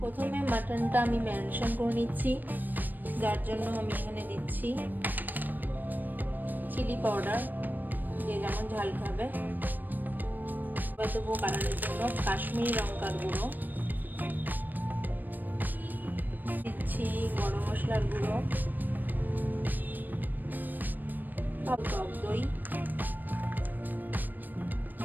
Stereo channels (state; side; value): late; left; 0.090 ms